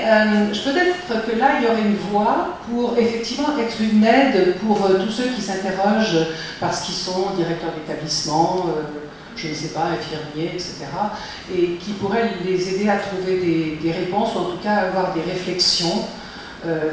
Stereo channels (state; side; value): identical; both; correlation 1.00